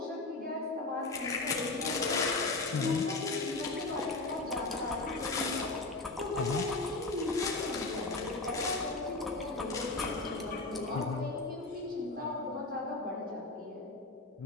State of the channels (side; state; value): right; quieter; 3.2 dB